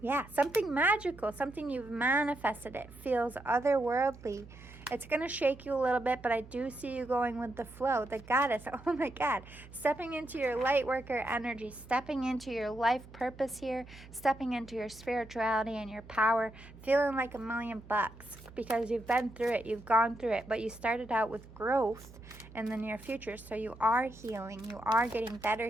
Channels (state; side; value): noise; right; hum, 19 dB below the sound